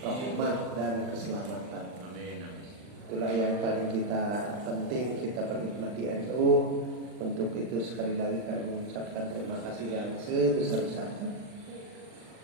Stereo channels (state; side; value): late; left; 40 ms